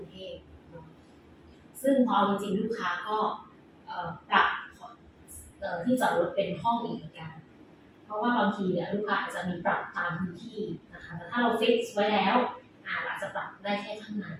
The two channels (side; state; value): both; identical; correlation 1.00